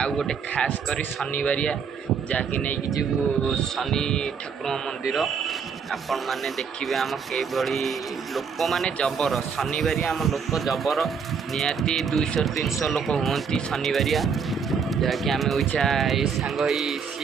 ଗୋଟେ ଖାସ୍ କରି ଶନିବାରିଆ ଯାହାକି ନେଇକି ଯିବୁ ଶନି ଠାକୁରଙ୍କ ମନ୍ଦିର। ଆପଣମାନେ ଦେଖିବେ ଆମ କିଭଳି ଲୋକମାନେ ଜବର। ଶନିବାରିଆ ଆମ ଲୋକ ଜବର, ନିହାତି 200-300 ଲୋକ ହୁଅନ୍ତି ଶନିବାରିଆ। ଯାହାକି ଆମେ ଓଇଛା ଏଇ ସାଙ୍ଗ ହେଇ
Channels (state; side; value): quieter; left; 6.2 dB